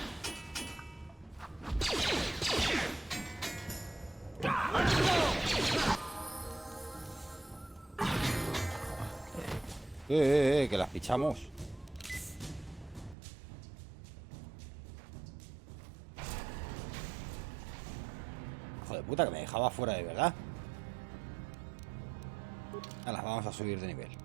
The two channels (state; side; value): drops out; left; at 13.2 s